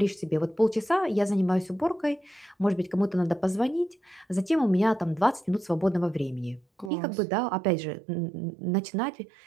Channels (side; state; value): left; drops out; at 6.9 s